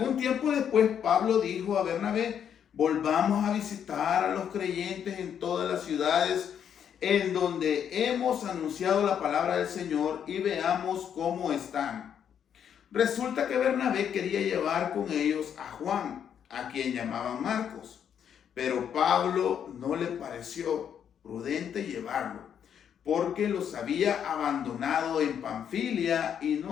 tiempo después Pablo dijo a Bernabé: volvamos a visitar a los creyentes en todas las ciudades en donde hemos anunciado la palabra del Señor y veamos cómo están. Resulta que Bernabé quería llevar con ellos a Juan, a quien llamaban Marcos, pero Pablo no le pareció prudente llevarlo, porque los había abandonado en Panfilia y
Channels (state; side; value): quieter; right; 8.6 dB